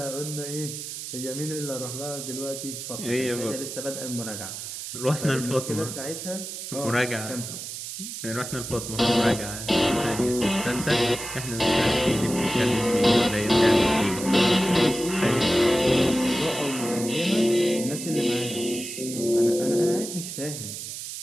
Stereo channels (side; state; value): right; noise; hiss, 8 dB below the sound